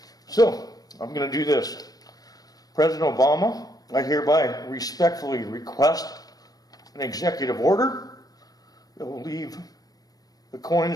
So, I'm going to do this. President Obama, I hereby respectfully request an executive order that will leave the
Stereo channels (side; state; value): right; late; 0.18 ms